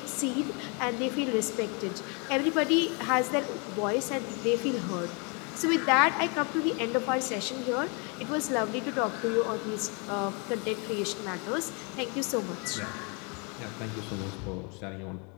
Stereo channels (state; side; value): quieter; right; 33.4 dB